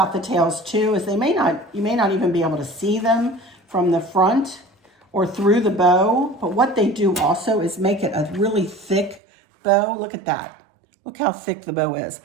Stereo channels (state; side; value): drops out; left; at 9.2 s